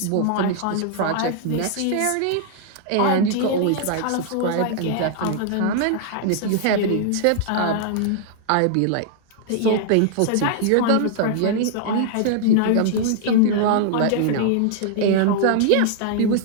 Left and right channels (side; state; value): both; different; correlation -0.01